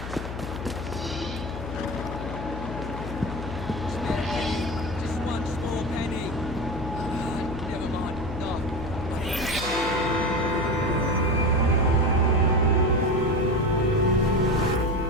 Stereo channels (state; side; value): noise; left; hum, 8 dB below the sound